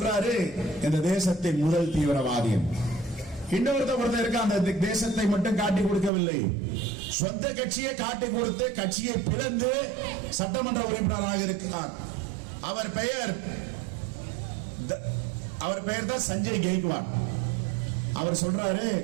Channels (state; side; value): drops out; left; at 6.1 s